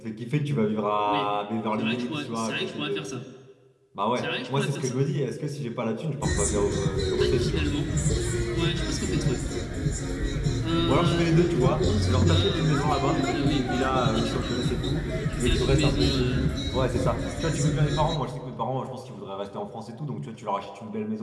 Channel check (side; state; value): both; identical; correlation 1.00